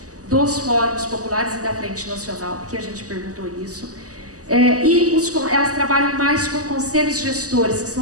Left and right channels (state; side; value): late; left; 0.66 ms